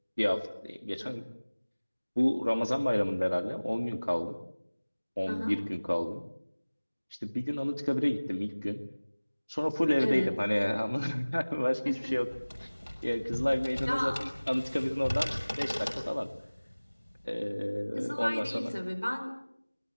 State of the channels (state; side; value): inverted; both; correlation -1.00